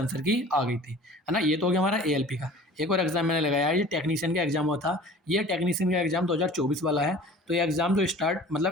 की आ गई थी, है ना। ये तो हो गया हमारा एएलपी का। एक और एग्ज़ाम मैंने लगाया है, ये टेक्नीशियन का एग्ज़ाम हुआ था। ये टेक्नीशियन का एग्ज़ाम 2024 वाला है। तो ये एग्ज़ाम जो स्टार्ट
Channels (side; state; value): both; normal; correlation 0.44